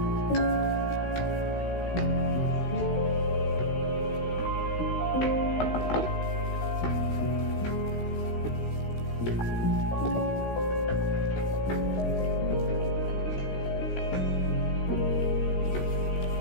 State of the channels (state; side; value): late; right; 16 ms